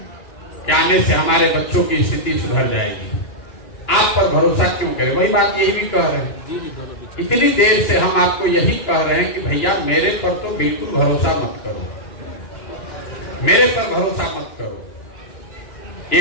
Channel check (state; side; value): late; right; 2.9 ms